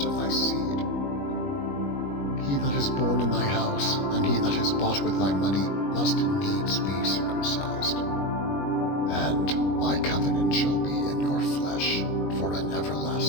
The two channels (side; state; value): right; late; 21 ms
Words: of thy seed. He that is born in thy house, and he that is bought with thy money, must needs be circumcised. And my covenant shall be in your flesh, for an